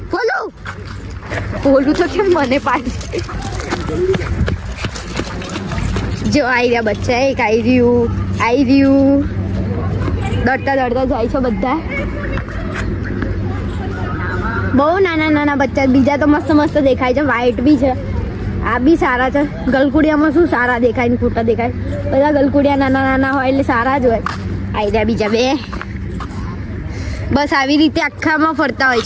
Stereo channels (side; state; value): both; identical; correlation 1.00